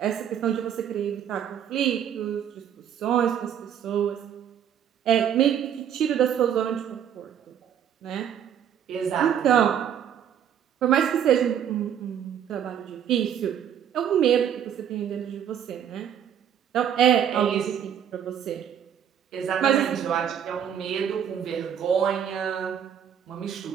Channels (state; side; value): quieter; left; 9.2 dB